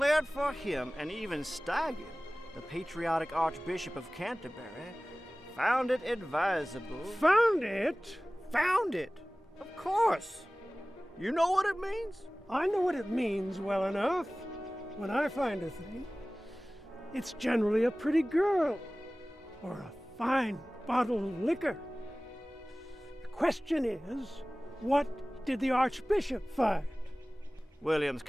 for him, and even Staggen, the patriotic Archbishop of Canterbury, found it advisable. Found it? Found it? Of course. You know what it means? I know what it means well enough. When I find a thing, it's generally a pretty girl or a fine bottle of liquor. The question is, what did the Archbishop find? William's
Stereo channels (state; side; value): normal; both; correlation 0.98